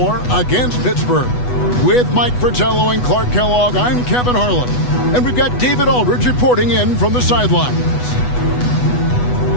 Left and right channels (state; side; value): late; right; 8.1 ms